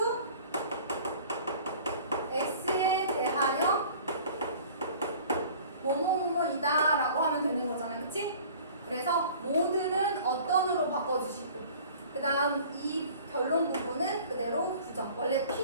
x에 대하여 뭐뭐뭐이다 라고 하면 되는 거잖아요, 그치? 그래서 모든은 어떤으로 바꿔주시고 그 다음 이 결론 부분은 그대로 부정. 원래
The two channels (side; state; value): both; inverted; correlation -0.47